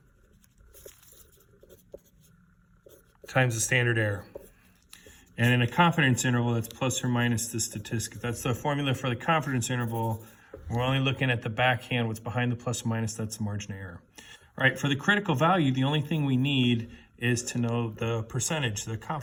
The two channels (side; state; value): both; identical; correlation 1.00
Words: times the standard error. And in a confidence interval, that's plus or minus the statistic. That's the formula for the confidence interval. We're only looking at the backhand, what's behind the plus or minus, that's the margin of error. All right, for the critical value, the only thing we need is to know the percentage, the